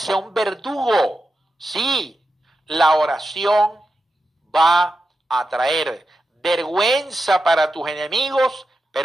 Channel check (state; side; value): normal; both; correlation 0.89